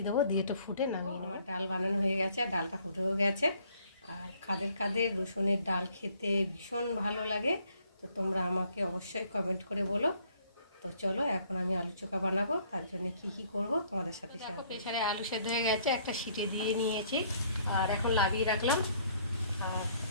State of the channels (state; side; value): inverted; both; correlation -0.63